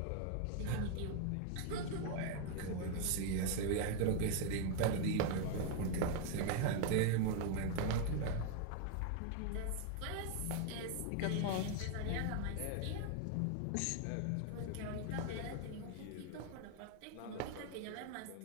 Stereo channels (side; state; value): both; different; correlation 0.01